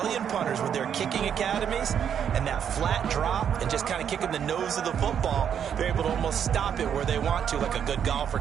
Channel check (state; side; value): quieter; left; 8.4 dB